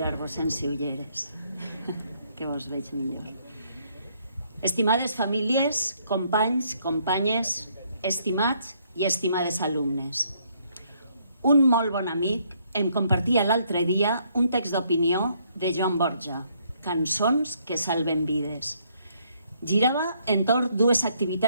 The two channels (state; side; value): inverted; both; correlation -0.69